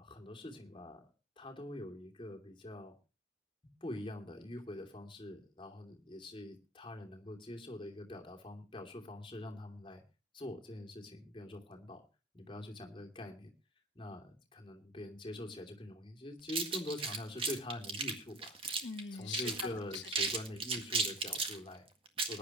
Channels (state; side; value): normal; both; correlation 0.40